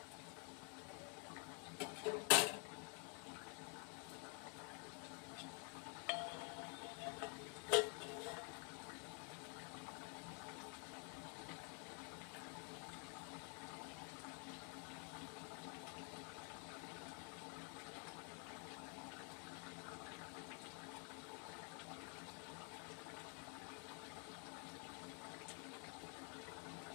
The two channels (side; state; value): right; quieter; 38.5 dB